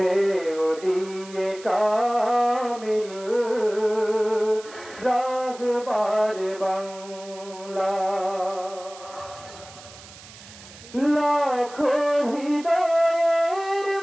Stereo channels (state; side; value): noise; right; hiss, 19 dB below the sound